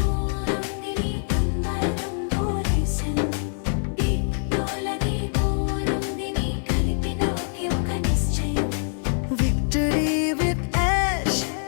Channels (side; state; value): right; silent; digital silence